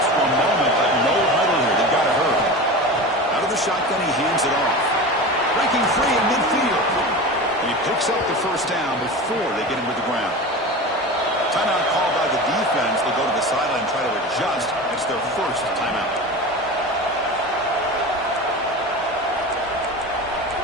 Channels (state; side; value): normal; both; correlation 0.30